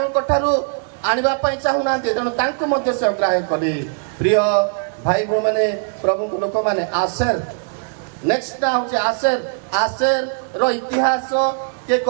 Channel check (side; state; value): left; silent; 66 dB below the other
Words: ଠାରୁ ଆଣିବା ପାଇଁ ଚାହୁଁନାହାନ୍ତି। ତେଣୁ ତାଙ୍କୁ ମଧ୍ୟ ସେ ଅଗ୍ରାହ୍ୟ କଲେ। ପ୍ରିୟ ଭାଇ ଭଉଣୀ ମାନେ, ପ୍ରଭୁଙ୍କ ଲୋକମାନେ, ଆସେର ନେକ୍ସଟ ଟା ହଉଛି ଆସେର। ଆସେର ର ଇତିହାସ କିଏ